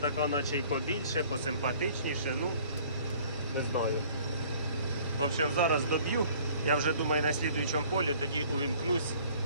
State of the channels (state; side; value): inverted; both; correlation -0.54